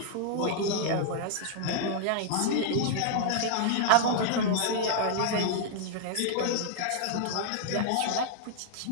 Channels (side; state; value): both; different; correlation 0.00